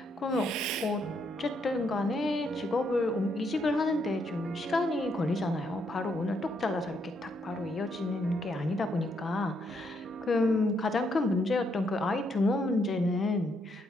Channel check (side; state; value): both; normal; correlation 0.75